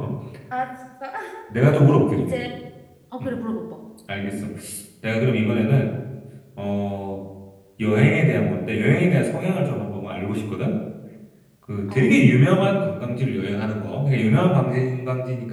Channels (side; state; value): both; identical; correlation 1.00